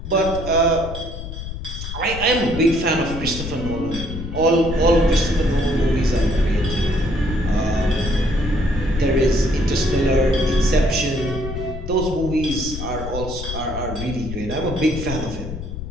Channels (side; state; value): left; noise; rumble, 8 dB below the sound